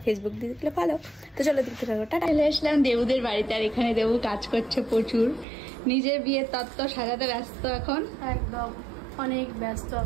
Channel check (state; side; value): drops out; left; at 5.5 s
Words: ফেসবুক দিয়ে দেখলে ফলো। তো চলো দেখতে থাকো। টাটা। চলে আসলাম দেবুদের বাড়িতে আর এখানে দেবু কাজ করছে প্রচুর, নিজের বিয়ের তত্ত্ব সাজাতে ব্যস্ত এখন। একদম অনেক ব্যস্ত,